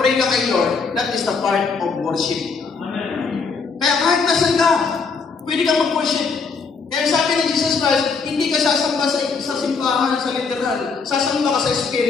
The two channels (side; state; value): right; quieter; 5.0 dB